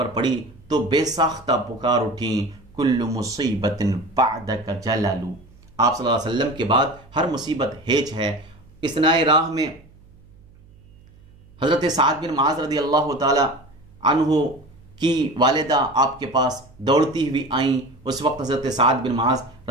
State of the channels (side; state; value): right; noise; hum, 26 dB below the sound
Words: پڑی تو بے ساختہ پکار اٹھیں کل مصیبت بعدک جلل، آپ صلی اللہ علیہ وسلم کے بعد ہر مصیبت ہیچ ہے۔ اثناء راہ میں حضرت سعد بن معاذ رضی اللہ تعالی عنہ کی والدہ آپ کے پاس دوڑتی ہوئی آئیں۔ اس وقت حضرت سعد بن معاذ